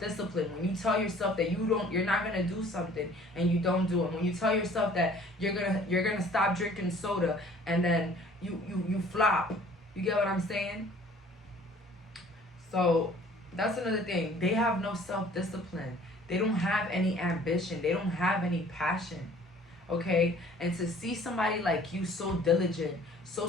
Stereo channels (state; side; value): normal; both; correlation 0.53